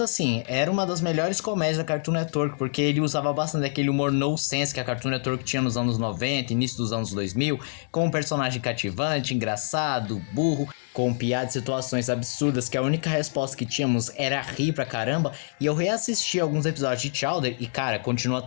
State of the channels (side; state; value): right; silent; digital silence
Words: era uma das melhores comédias da Cartoon Network, porque ele usava bastante aquele humor nonsense que a Cartoon Network tinha nos anos 90, início dos anos 2000, com um personagem cativante, engraçado, burro, com piadas e situações absurdas que a única resposta que tínhamos era rir pra caramba. E eu reassisti alguns episódios de Chowder e cara, continua